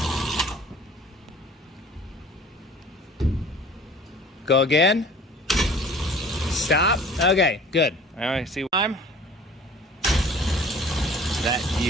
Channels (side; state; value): both; normal; correlation 0.47